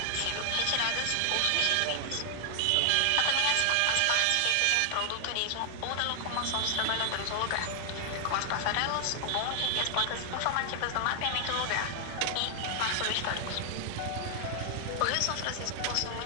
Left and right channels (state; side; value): different; both; correlation 0.00